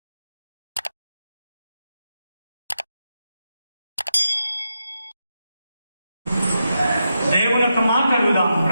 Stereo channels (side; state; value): both; inverted; correlation -0.86